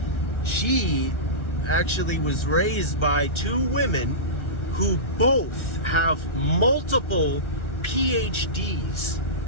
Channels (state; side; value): late; right; 1.4 ms